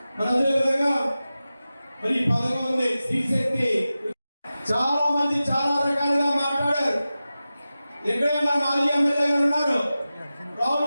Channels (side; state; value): both; inverted; correlation -0.94